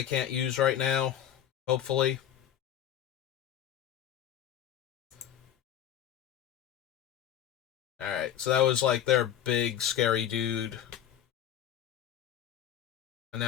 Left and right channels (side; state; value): right; quieter; 10.5 dB